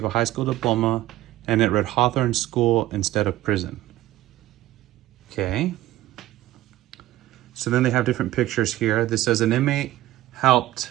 a high school diploma, and it read Hawthorne School instead of prison. Okay. So then they have different pictures here. This says an inmate helped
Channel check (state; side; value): quieter; left; 15.5 dB